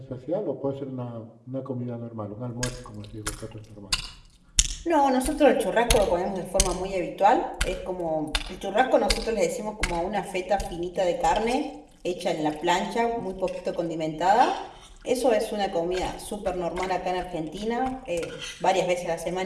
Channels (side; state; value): both; identical; correlation 1.00